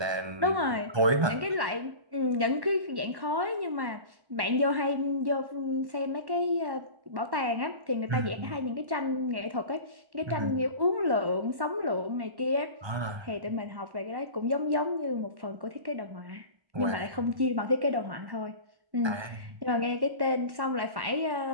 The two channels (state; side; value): late; left; 1.1 ms